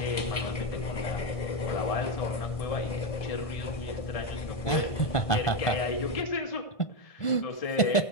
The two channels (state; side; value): late; right; 1.5 ms